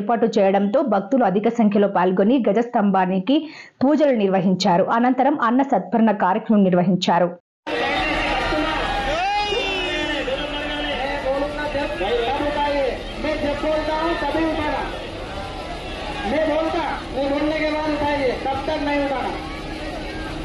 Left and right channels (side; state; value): both; identical; correlation 1.00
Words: చేయడంతో భక్తులు అధిక సంఖ్యలో పాల్గొని గజ స్తంభానికి పూజలు నిర్వహించారు. అనంతరం అన్న సత్పరణ కార్యక్రమం నిర్వహించారు. मैं बोलता हूँ तभी उठाना, मैं बोलने के बाद उठाइए, तब तक नहीं उठाना.